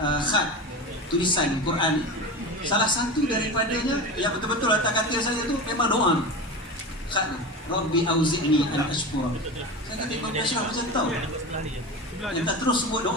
tulisan Quran. Salah satu daripadanya yang betul-betul atas katil saya tu memang doa ni. Khat tu, Rabbi auzi'ni an ashkura. Saya kata Imam Ashraf macam tahu. Yang tak terus sebut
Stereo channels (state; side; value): normal; both; correlation 0.27